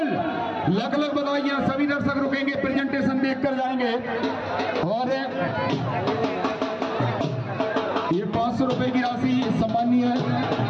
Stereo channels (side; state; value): both; identical; correlation 1.00